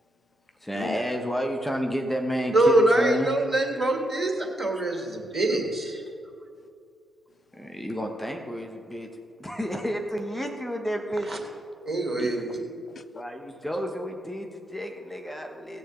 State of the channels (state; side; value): normal; both; correlation 0.80